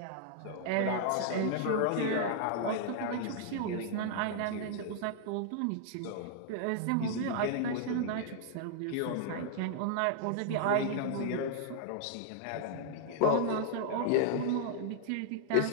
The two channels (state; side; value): different; both; correlation -0.01